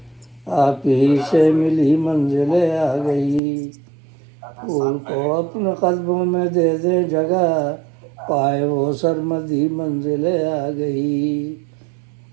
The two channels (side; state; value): left; drops out; at 3.4 s